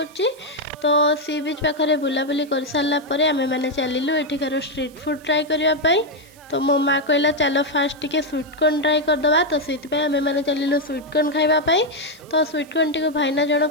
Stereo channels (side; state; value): right; noise; hiss, 26 dB below the sound